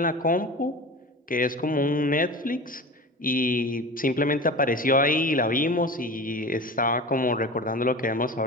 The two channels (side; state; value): both; normal; correlation 0.33